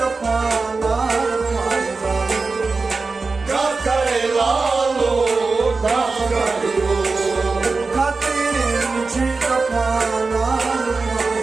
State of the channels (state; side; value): quieter; left; 4.1 dB